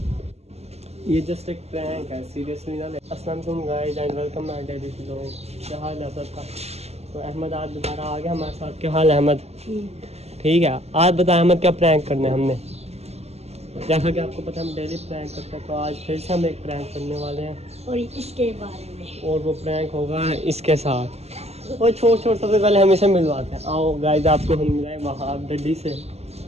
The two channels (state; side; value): late; left; 0.30 ms